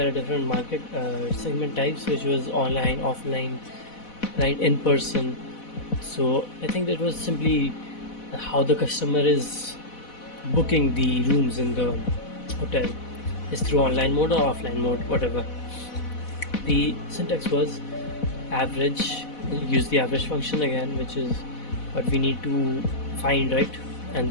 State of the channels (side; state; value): right; late; 4.1 ms